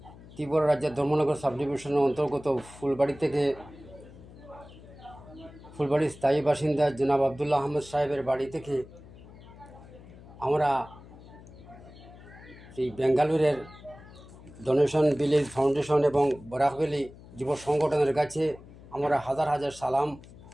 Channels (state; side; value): noise; left; hum, 19 dB below the sound